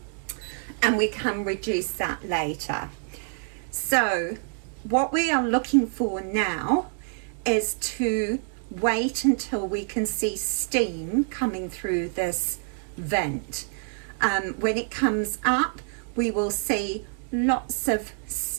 and we can reduce that later. So what we are looking for now is to wait until we can see steam coming through this vent. When it comes up, we will see lots of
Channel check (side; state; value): left; silent; 56 dB below the other